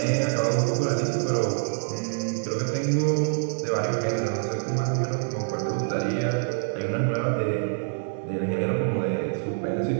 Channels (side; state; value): left; silent; digital silence